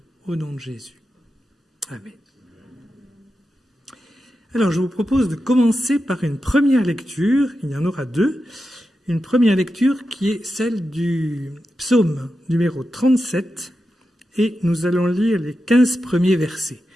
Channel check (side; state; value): both; normal; correlation 0.89